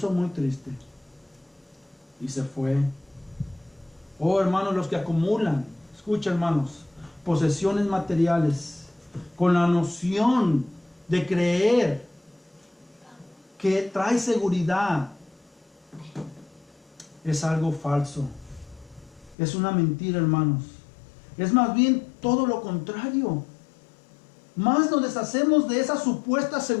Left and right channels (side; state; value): right; drops out; at 19.4 s